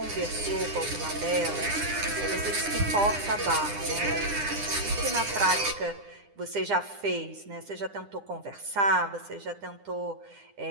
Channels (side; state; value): left; late; 9.9 ms